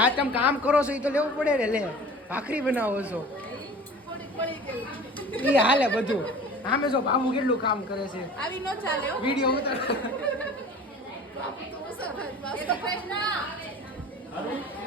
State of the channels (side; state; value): both; normal; correlation 0.42